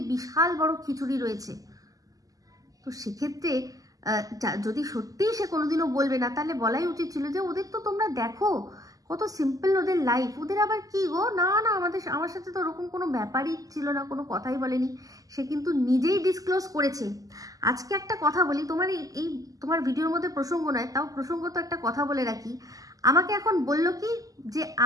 বিশাল বড় খিচুড়ি রয়েছে। তো সেক্ষেত্রে যদি সত্যিই সে কোনোদিনও বলবে না, তাহলে বলাই উচিত ছিল যে ওদের তো তোমরা দেখো কত সিম্পল ওদের লাইফ। ওদের আবার কি গো, না না আমার সাথে তো ওরকম কোনো ব্যাপারই ছিল না, কোনো কথাই বলেনি। সে কিন্তু নিজেই ডিসক্লোজ করেছে। আজকে একটা কথা বলি, তোমার এই তোমার ভিডিওর মধ্যে প্রসঙ্গ নয়, তাও প্রসঙ্গ তো একটা কথা বলে রাখি। আমাকে এখন বলল কি যে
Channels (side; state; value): left; late; 0.17 ms